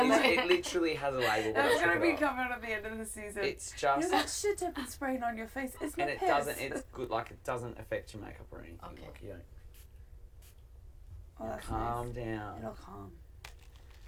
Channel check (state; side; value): identical; both; correlation 1.00